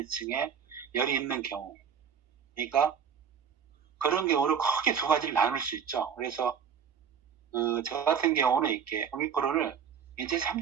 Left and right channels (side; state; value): left; quieter; 7.4 dB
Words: 열이 있는 경우, 그러니까 그런 경우를 크게 2가지를 나눌 수 있죠. 그래서 저 같은 경우는 이렇게 오미크론을 인체